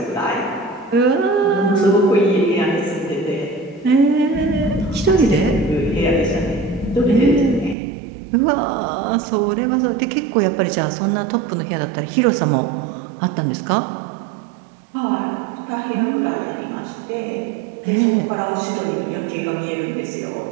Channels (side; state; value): left; drops out; at 7.8 s